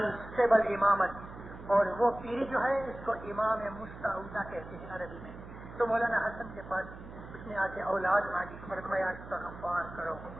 اسٹیبل امامت. اور وہ پیری جو ہے اس کو امام مستعودہ کہتے ہیں عربی میں. تو مولانا حسن کے پاس اس نے آ کے اولاد مانگی, فرمایا استغفار کرو,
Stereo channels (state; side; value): noise; right; hum, 14 dB below the sound